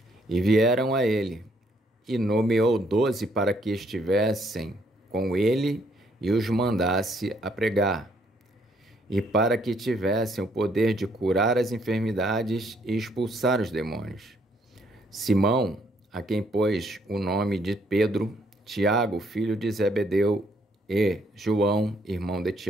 e vieram a ele, e nomeou 12 para que estivessem com ele e os mandasse a pregar, e para que tivessem o poder de curar as enfermidades e expulsar os demônios. Simão, a quem pôs o nome de Pedro, Tiago, filho de Zebedeu, e João, irmão de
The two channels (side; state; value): both; normal; correlation 0.69